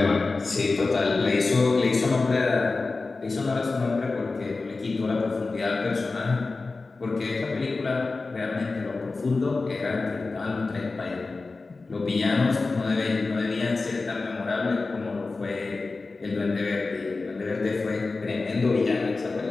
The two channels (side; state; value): right; quieter; 3.8 dB